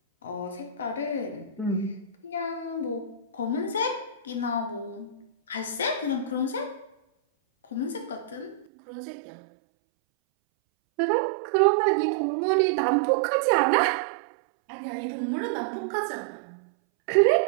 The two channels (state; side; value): drops out; left; at 8.7 s